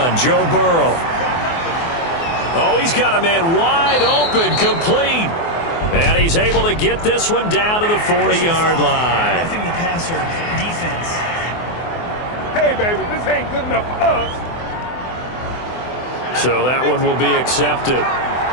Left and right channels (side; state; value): right; late; 24 ms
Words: Joe Burrow. Oh, he's got a man wide open, complete. And he's able to get this one down to the 40-yard line. Roughing the passer, defense. Hey, baby, this ain't good enough for us. So that one will be accepted.